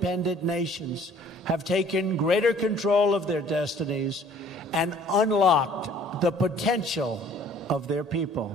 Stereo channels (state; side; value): normal; both; correlation 0.54